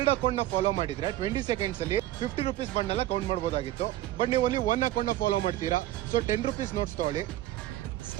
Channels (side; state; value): left; quieter; 14.9 dB